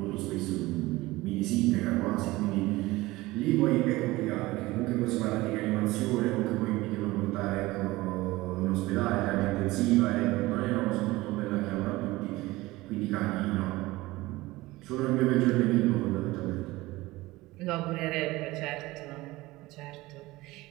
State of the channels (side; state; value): left; quieter; 19.5 dB